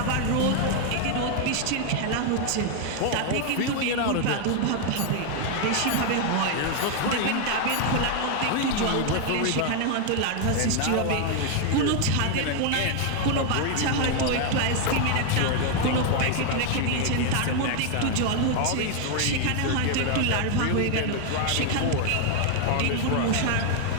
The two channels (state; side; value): different; both; correlation 0.00